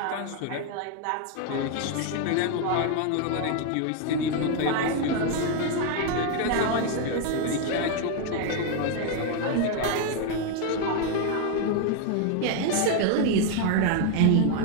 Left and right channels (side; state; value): both; different; correlation 0.01